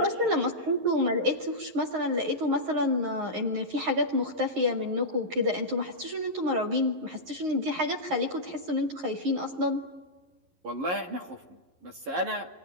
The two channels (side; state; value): left; late; 11 ms